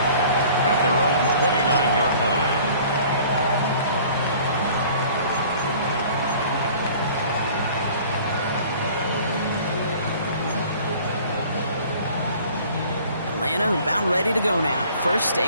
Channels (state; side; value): inverted; both; correlation -0.50